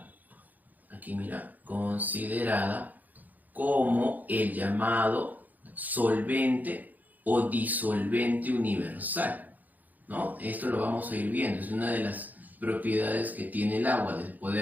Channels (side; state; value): left; late; 0.082 ms